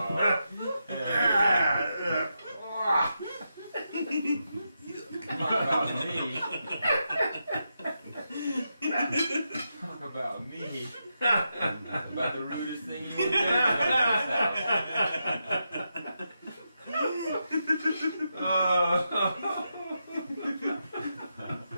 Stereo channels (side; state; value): both; inverted; correlation -0.85